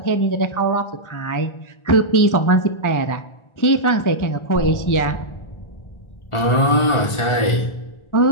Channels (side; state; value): right; late; 1.4 ms